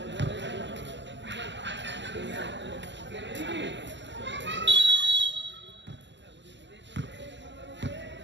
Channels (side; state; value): left; late; 0.52 ms